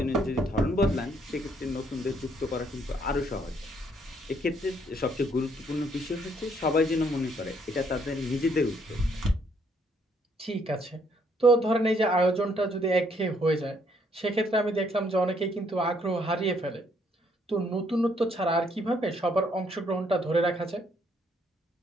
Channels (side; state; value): both; normal; correlation 0.69